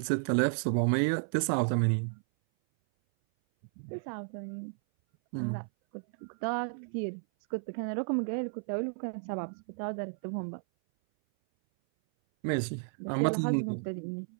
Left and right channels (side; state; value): left; silent; 56 dB below the other